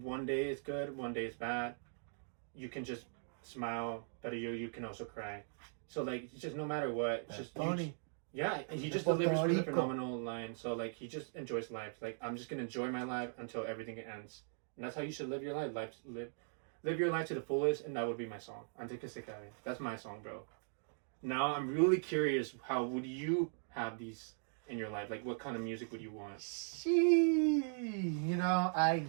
day is good, one day is bad. You can just smile, but you can also cry. So like it's just no matter what, it's just funny. He just delivers with a phenomenal line. So like he just enjoys life. Like I'm just gonna enjoy my life until everything ends, and that's how you should live your life. Live your life to the fullest, and that would be my song. Antes que se acabe. That's my song, bro. Now I'm really curious. How would you have these in your life? Like, what kind of music would you want? I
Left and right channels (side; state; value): left; silent; digital silence